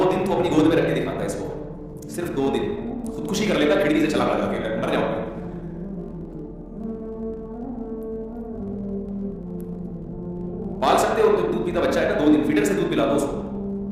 دن تو اپنی گود میں رکھ کے دکھاتا ہے اس کو, صرف 2 دن خودکشی کر لیتا, کھڑکی سے چلا لگا کے مر جاؤں گا. پال سکتے ہو, تو دودھ پیتا بچہ ہے نا, 2 دن فیڈر سے دودھ پلا دو اس کو,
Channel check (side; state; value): both; identical; correlation 1.00